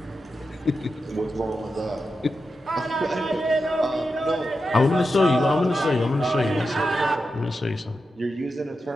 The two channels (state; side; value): normal; both; correlation 0.89